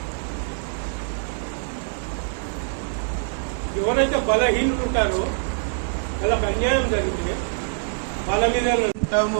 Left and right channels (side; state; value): left; silent; digital silence